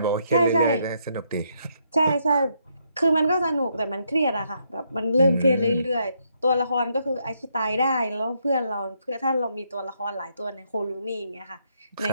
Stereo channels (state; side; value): inverted; both; correlation -0.75